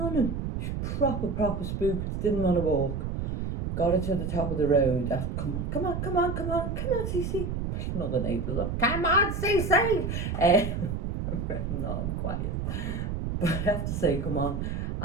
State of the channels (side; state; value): right; noise; rumble, 2 dB below the sound